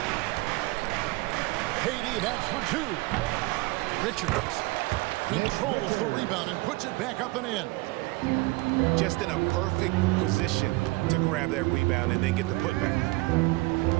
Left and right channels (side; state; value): left; quieter; 22.7 dB